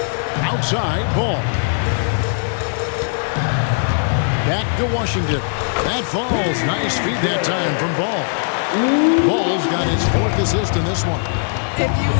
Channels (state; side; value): silent; right; 67 dB below the other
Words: Outside, Ball. Back to Washington. That falls. Nice feed that time from Ball. Ball's got his 4th assist in this one. If you